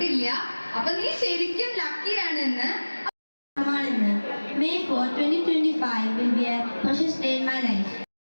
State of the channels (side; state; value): both; inverted; correlation -1.00